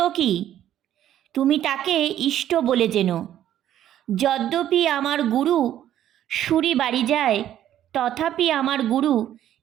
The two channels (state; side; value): quieter; left; 11.6 dB